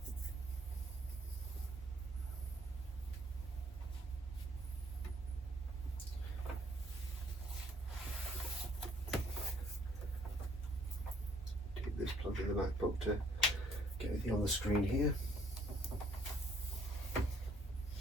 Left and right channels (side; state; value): both; normal; correlation 0.64